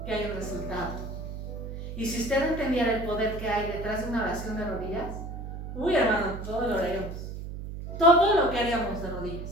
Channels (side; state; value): right; noise; hum, 8 dB below the sound